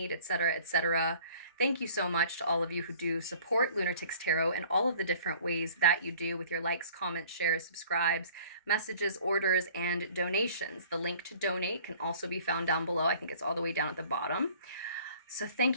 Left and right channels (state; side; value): inverted; both; correlation -0.51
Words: etc., etc. Thank you so much to all of you who do support Lunatics Tarot in all of the different ways that you do, with your likes, comments, shares, subscribes, messages, orders, and donations. The link to donate can also be found down below. I think it's all the way down at the bottom. So thank